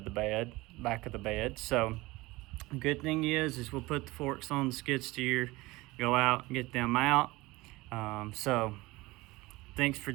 of the bed. So the good thing is we'll put the forks on the skid steer, go out and get them out. So thanks for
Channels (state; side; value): quieter; left; 20.9 dB